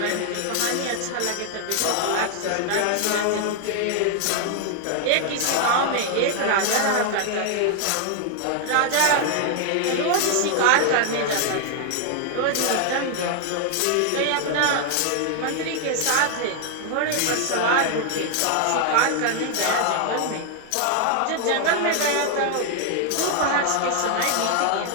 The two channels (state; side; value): different; both; correlation 0.00